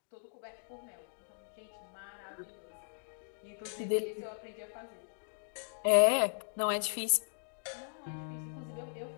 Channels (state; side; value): silent; right; digital silence